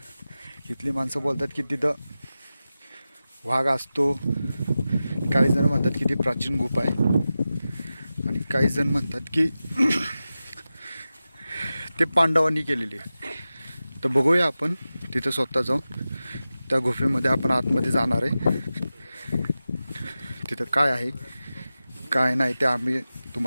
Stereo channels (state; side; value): inverted; both; correlation -0.94